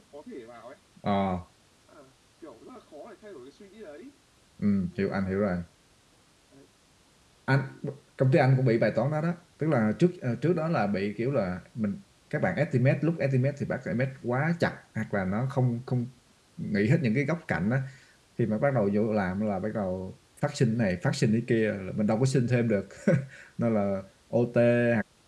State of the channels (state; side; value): identical; both; correlation 1.00